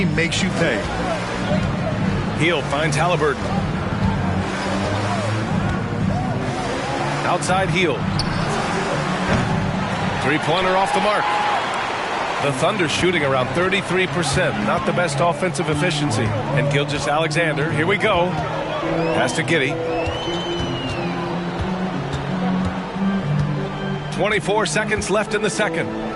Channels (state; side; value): identical; both; correlation 1.00